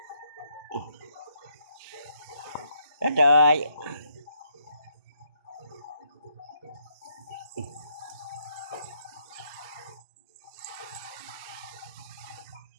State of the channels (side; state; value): both; inverted; correlation -0.74